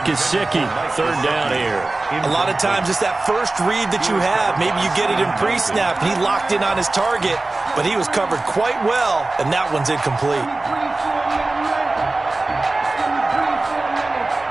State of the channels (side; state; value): left; quieter; 3.1 dB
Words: Gesicki. 3rd down here. A lot of times it's that first read that you have. Maybe you get it in pre-snap, and he locked in on his target, but he was covered quite well, and that one's incomplete.